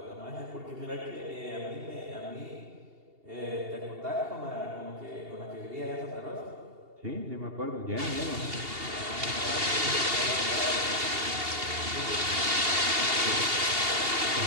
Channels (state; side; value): late; left; 2.8 ms